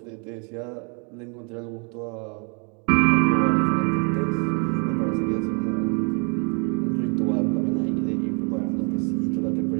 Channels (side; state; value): left; quieter; 36.9 dB